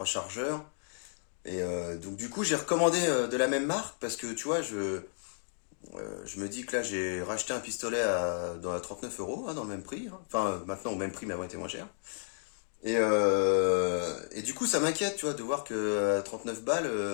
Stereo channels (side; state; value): right; silent; digital silence